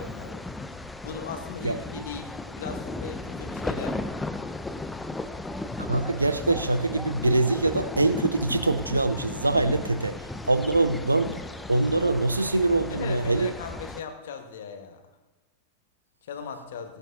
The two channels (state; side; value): inverted; both; correlation -0.69